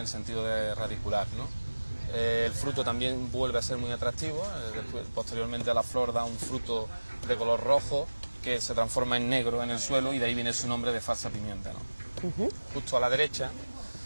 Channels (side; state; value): both; inverted; correlation -1.00